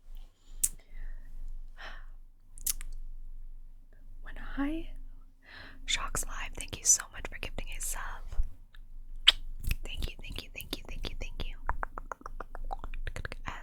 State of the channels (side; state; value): both; identical; correlation 1.00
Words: when I Shocks Live, thank you so much for gifting a sub. Thank you, thank you, thank you, thank you, thank you.